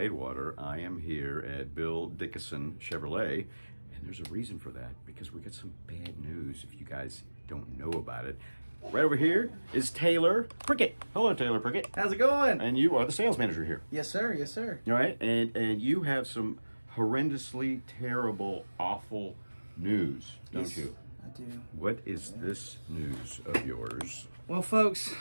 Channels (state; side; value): inverted; both; correlation -1.00